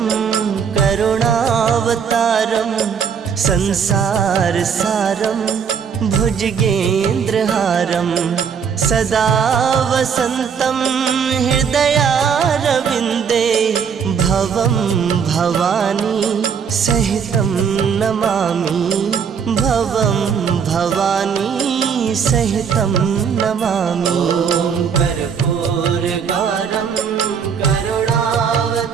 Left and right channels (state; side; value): quieter; left; 6.8 dB